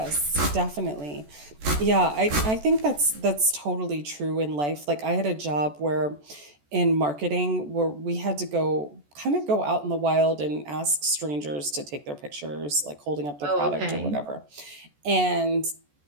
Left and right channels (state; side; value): late; left; 14 ms